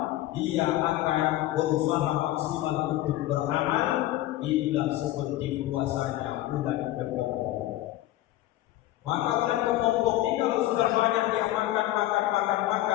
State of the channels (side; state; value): right; quieter; 15.2 dB